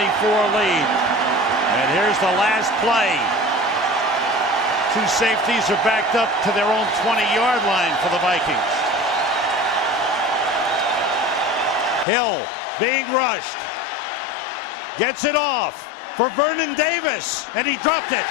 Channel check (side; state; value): right; drops out; at 12.1 s